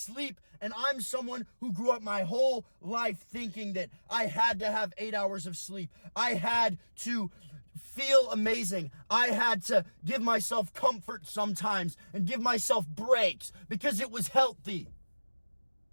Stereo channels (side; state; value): both; inverted; correlation -1.00